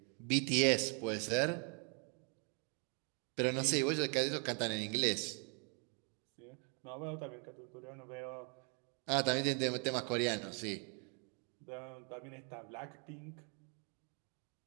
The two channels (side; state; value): left; quieter; 37.9 dB